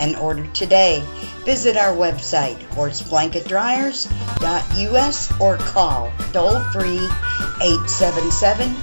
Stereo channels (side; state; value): both; inverted; correlation -1.00